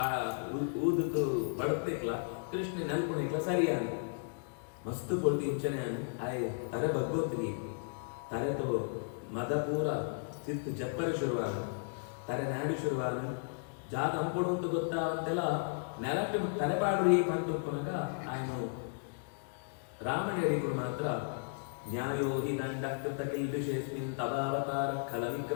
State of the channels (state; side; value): silent; right; digital silence